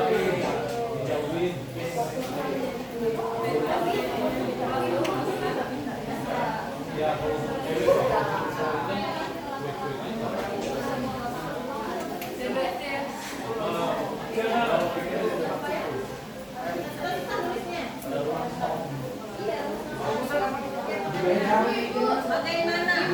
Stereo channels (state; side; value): identical; both; correlation 1.00